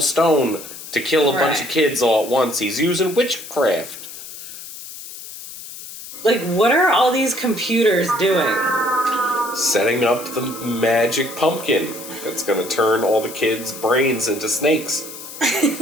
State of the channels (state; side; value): noise; left; hiss, 13 dB below the sound